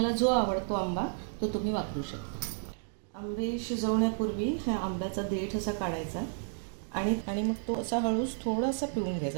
जो आवडतो आंबा तो तुम्ही वापरू शकता. आंबे शिजवण्यापूर्वी ह्या आंब्याचा देठ असा काढायचा आणि मग तो असा हळूच थोडासा पिळून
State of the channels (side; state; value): left; silent; digital silence